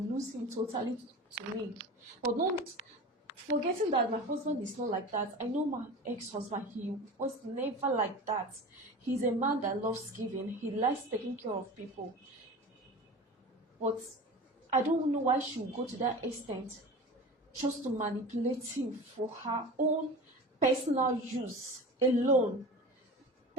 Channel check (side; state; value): both; normal; correlation 0.33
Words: him totally to me. But not forgetting that my husband is not like that. I know my ex-husband, he was never like that. He's a man that loves giving. He likes taking care of people. But I don't know why she would go to that extent just to manipulate him for her own personal use alone.